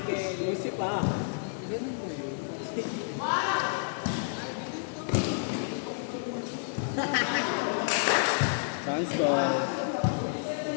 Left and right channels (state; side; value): silent; right; digital silence